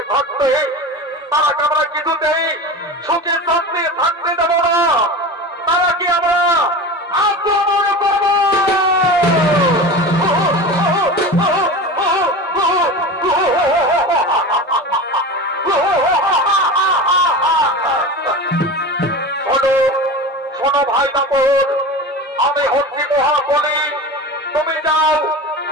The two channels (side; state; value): both; normal; correlation 0.30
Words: থাকতে তারাকে আমরা কিছুতেই সুখে শান্তি থাকতে দেব না। তারা কি আমরা আক্রমণ করব? শোনো ভাই দাপর, আমি হচ্ছি মহাবলী। তুমি